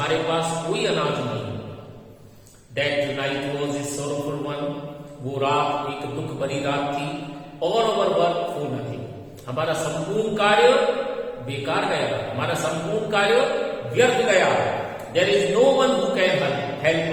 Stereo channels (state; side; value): identical; both; correlation 1.00